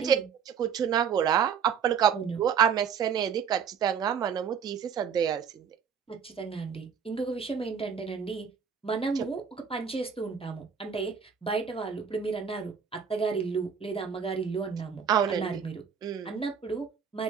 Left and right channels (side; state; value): left; quieter; 7.0 dB